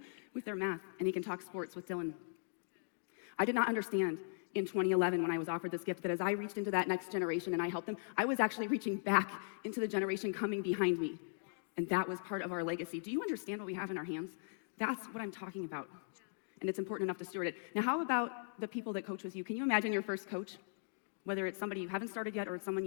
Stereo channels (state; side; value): silent; right; digital silence